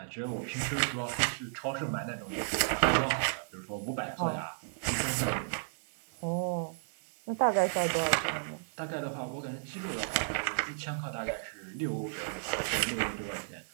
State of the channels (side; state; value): left; silent; digital silence